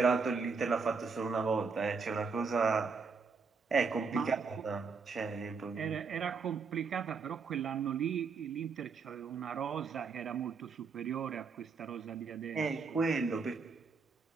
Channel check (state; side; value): quieter; left; 5.0 dB